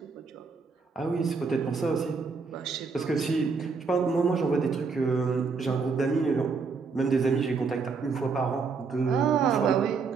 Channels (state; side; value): quieter; left; 4.9 dB